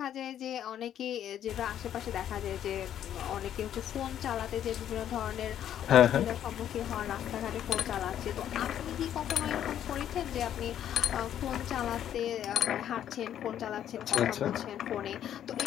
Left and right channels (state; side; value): quieter; right; 10.5 dB